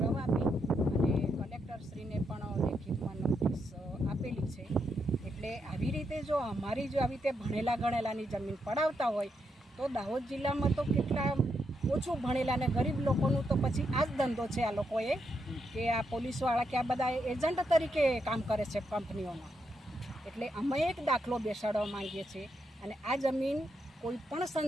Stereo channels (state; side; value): normal; both; correlation 0.81